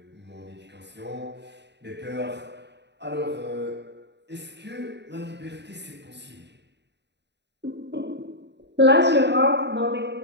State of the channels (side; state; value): left; late; 0.50 ms